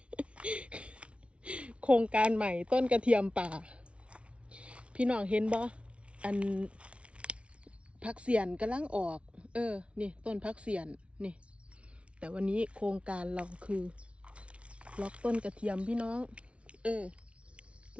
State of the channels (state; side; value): late; left; 0.061 ms